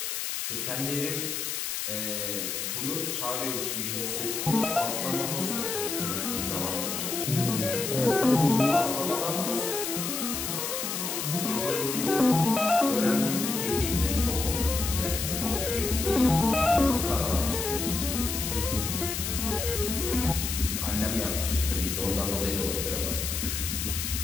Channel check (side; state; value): left; noise; hiss, 3 dB below the sound